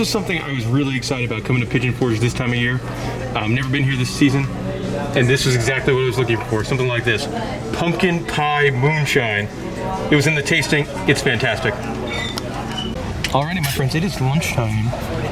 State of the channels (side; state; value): both; identical; correlation 1.00